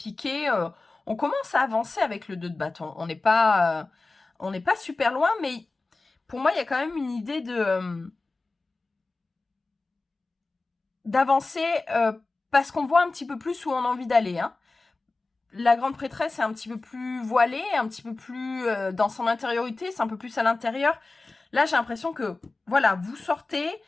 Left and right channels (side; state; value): right; quieter; 3.5 dB